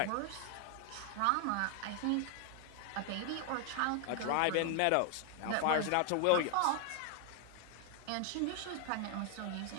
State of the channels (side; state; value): both; different; correlation 0.00